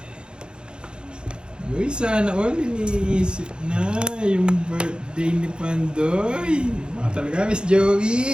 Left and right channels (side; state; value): left; late; 0.050 ms